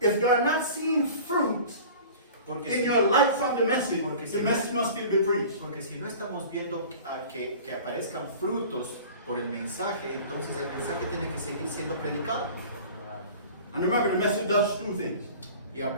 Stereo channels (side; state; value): both; inverted; correlation -0.41